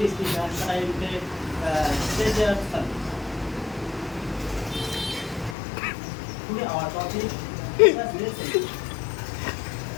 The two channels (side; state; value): right; drops out; at 5.6 s